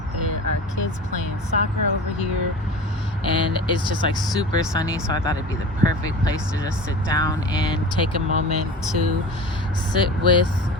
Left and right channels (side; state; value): both; normal; correlation 0.34